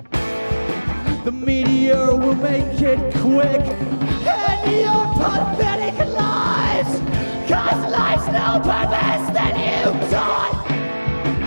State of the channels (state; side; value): inverted; both; correlation -1.00